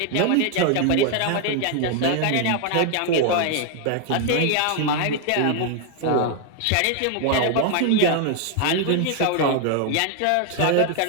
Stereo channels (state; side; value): different; both; correlation 0.00